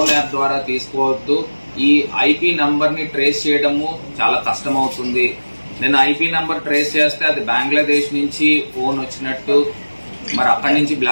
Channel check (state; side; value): inverted; both; correlation -1.00